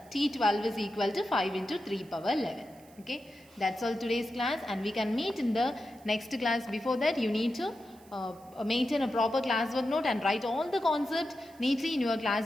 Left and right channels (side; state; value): right; noise; hiss, 27 dB below the sound